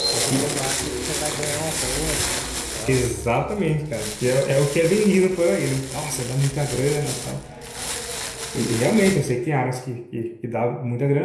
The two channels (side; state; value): both; identical; correlation 1.00